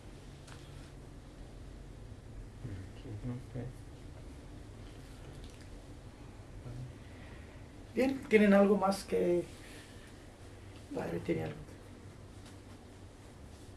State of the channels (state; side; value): identical; both; correlation 1.00